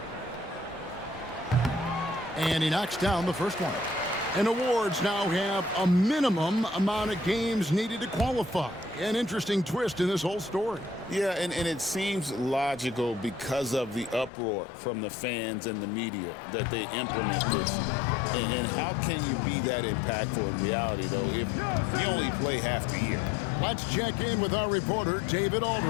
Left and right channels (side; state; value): right; drops out; at 14.3 s